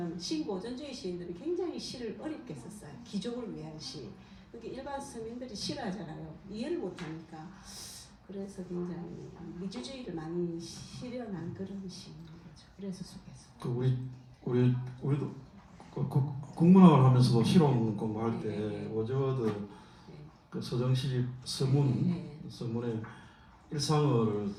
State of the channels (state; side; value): identical; both; correlation 1.00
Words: 신고전주의 시인들이 굉장히 시를 어렵게 썼어요. 귀족을 위한 시. 그게 일반 서민들이 싫어하잖아요. 이해를 못하니까. 그래서 굉장히 미주주의를 많이 실현한 그런 시인 거죠. 그래서 속에서. 그 우리도 국문학을 하면서도 실험 공부할 때 워즈워드 그 서정시 서문의 일상어를